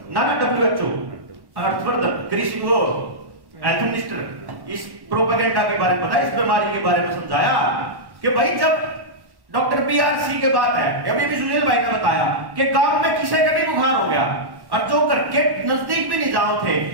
ना WHO। हर्षवर्धन कृषि वो हेल्थ मिनिस्टर इस प्रोपेगेंडा के बारे में बताया, इस बीमारी के बारे में समझाया कि भाई जब डॉक्टर BRC के बात है, अभी भी सुनील भाई ने बताया कि गांव में किसी का भी बुखार हो गया और जो घर के नजदीक भी नहीं जाओ थे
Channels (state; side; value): late; left; 1.1 ms